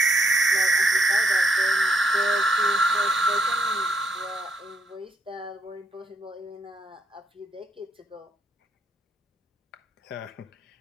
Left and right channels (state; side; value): normal; both; correlation 0.74